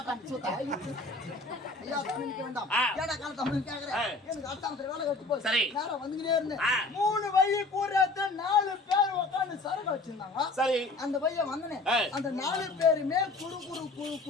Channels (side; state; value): right; quieter; 3.3 dB